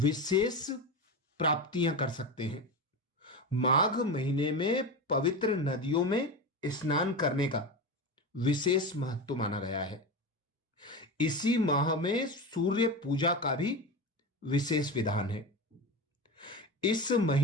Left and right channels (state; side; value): normal; both; correlation 0.23